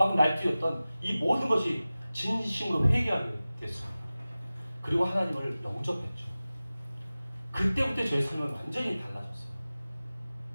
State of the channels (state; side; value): inverted; both; correlation -0.97